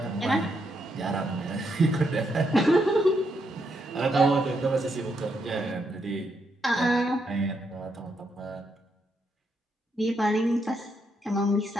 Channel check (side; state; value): both; normal; correlation 0.79